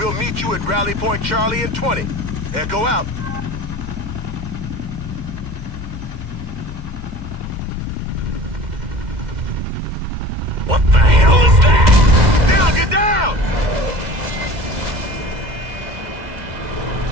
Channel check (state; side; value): late; left; 2.1 ms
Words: meet you at Rally Point Charlie in 20. Echo out. What the hell is that? Down, get down!